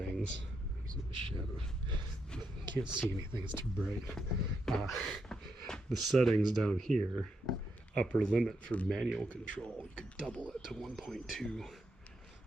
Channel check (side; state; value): both; normal; correlation 0.81